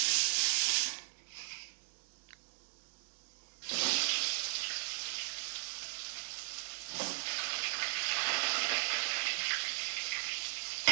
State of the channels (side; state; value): left; silent; 53 dB below the other